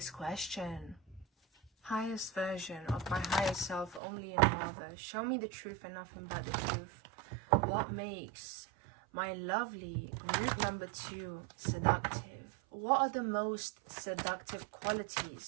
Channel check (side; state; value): left; drops out; at 4.0 s